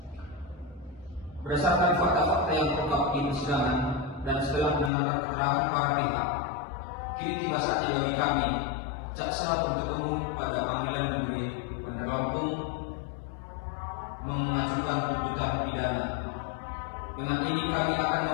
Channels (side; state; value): right; drops out; at 4.9 s